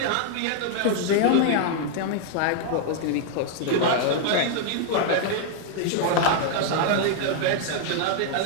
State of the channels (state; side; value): different; both; correlation 0.00